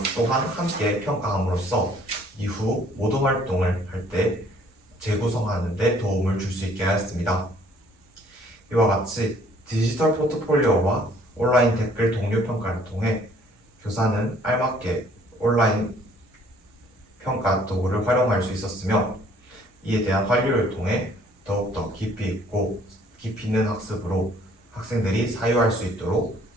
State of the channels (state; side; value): normal; both; correlation 0.59